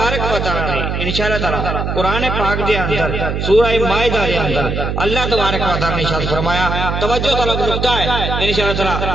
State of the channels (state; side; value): noise; right; hum, 2 dB below the sound